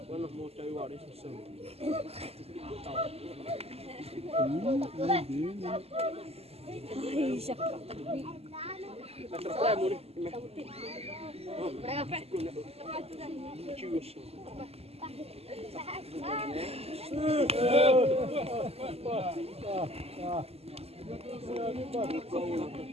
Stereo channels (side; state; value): left; late; 0.29 ms